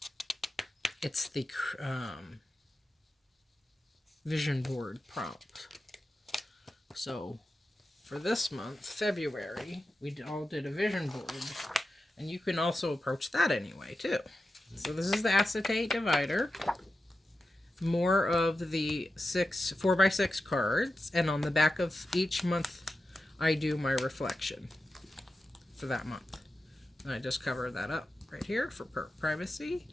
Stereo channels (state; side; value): normal; both; correlation 0.91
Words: it's the vision board prompt. So for this month, February, we all did a vision board, and you can also approach that anyway too. So this is the acetate divider, more of the 4x6 cards, and on the back of each month I do my reflection for that month. And I just cover that up right here for privacy.